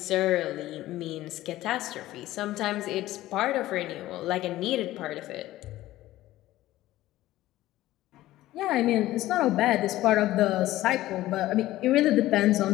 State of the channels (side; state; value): right; quieter; 15.7 dB